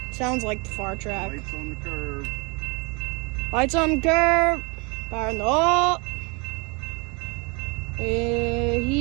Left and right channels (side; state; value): left; quieter; 30.9 dB